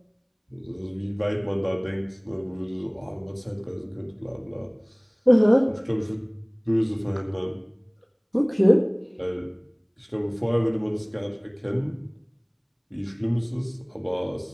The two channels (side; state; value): both; identical; correlation 1.00